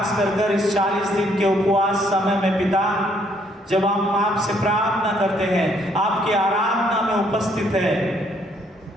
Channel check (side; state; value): both; normal; correlation 0.68